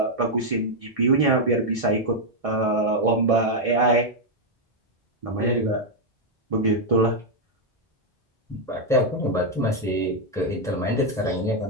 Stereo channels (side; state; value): both; normal; correlation 0.00